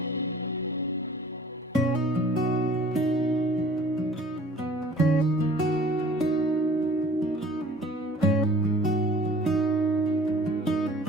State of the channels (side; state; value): both; normal; correlation 0.50